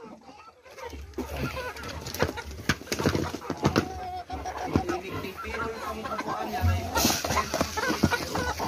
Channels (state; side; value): identical; both; correlation 1.00